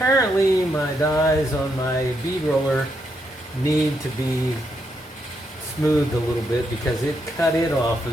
my dies on my bead roller need to be smoothed a little bit because it cut it off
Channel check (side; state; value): both; normal; correlation 0.79